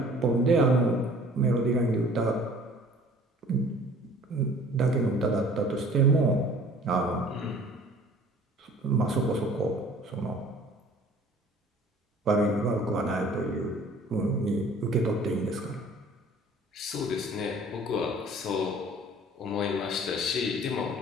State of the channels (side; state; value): both; normal; correlation 0.50